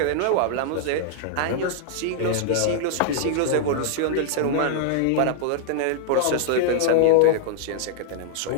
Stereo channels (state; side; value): different; both; correlation -0.01